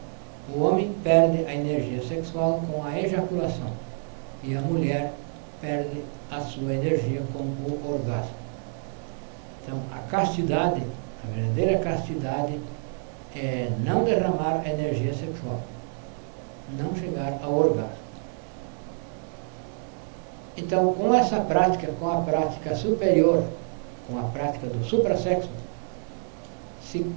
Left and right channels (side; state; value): left; silent; 60 dB below the other